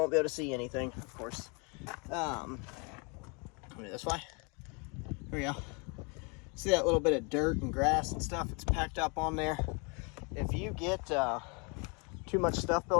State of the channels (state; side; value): quieter; right; 32.5 dB